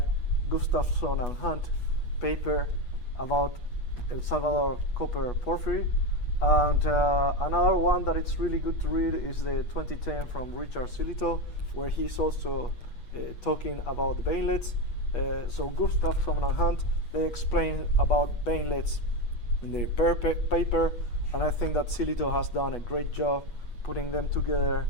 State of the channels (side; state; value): right; late; 8.3 ms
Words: Gustafson and Hunt paper about El Salvador copper porphyry. And another one that it's really good to read is the 2010 from Richard Silito, where he's also talking about veinlets. So Gustafson and Hunt, they explain about veinlets in their paper, and I think that Silito has done a great job putting them together